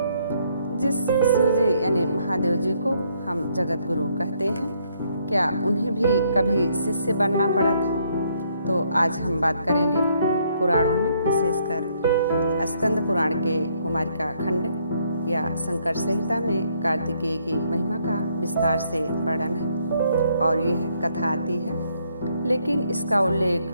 जिस शिव जी यानी महादेव जी को हम जगत गुरु कहते हैं, क्या उन्हें भी कभी शिष्य बनना पड़ा था? तो आज हम बात करेंगे पुराणों में, विशेषकर स्कंद पुराण के कुमारिका खंड या शंकर संहिता में कार्तिकेय की महिमा का विस्तार से वर्णन है और यह कथा आती है। लेकिन इसका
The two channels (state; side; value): inverted; both; correlation -0.70